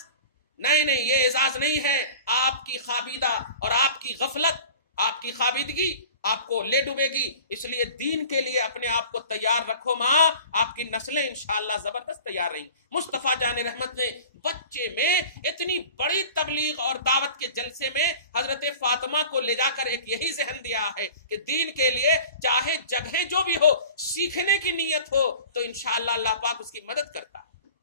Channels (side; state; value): both; inverted; correlation -0.42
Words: نہیں، یہ اعزاز نہیں ہے. آپ کی خابیدہ اور آپ کی غفلت، آپ کی خابیدگی آپ کو لے ڈوبے گی. اس لیے دین کے لیے اپنے آپ کو تیار رکھو ماں، آپ کی نسلیں انشاءاللہ زبردست تیار رہیں. مصطفیٰ جان رحمت نے بچے میں اتنی بڑی تبلیغ اور دعوت کے جلسے میں حضرت فاطمہ کو لے جا کر ایک یہی ذہن دیا ہے کہ دین کے لیے چاہے جگہیں جو بھی ہو، سیکھنے کی نیت ہو تو انشاءاللہ اللہ پاک اس کی مدد کرتا ہے.